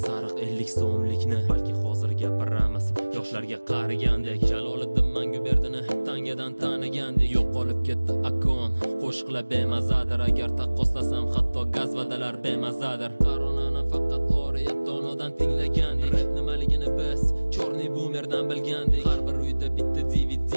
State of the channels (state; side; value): inverted; both; correlation -1.00